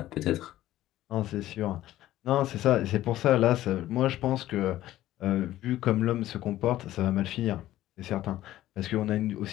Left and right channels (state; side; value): quieter; right; 14.4 dB